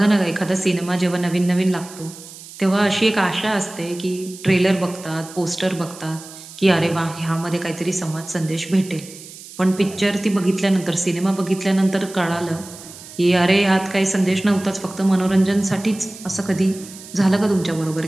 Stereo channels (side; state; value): right; noise; hiss, 16 dB below the sound